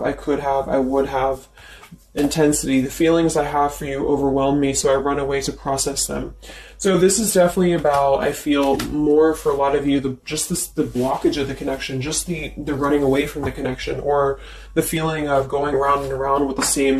I could have, I would have. Intensity. The feelings I have for you overwhelm me, so I run away to process them. So this is definitely about, I feel, more for a lot of you, the blockage of the connection, just the running away from the connection, or the feeling of going around and around with the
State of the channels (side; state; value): both; identical; correlation 1.00